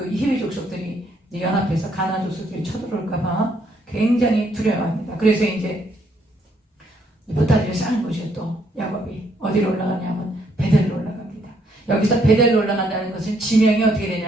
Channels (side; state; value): both; normal; correlation 0.71